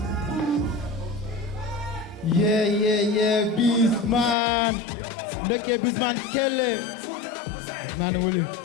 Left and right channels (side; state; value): right; drops out; at 4.4 s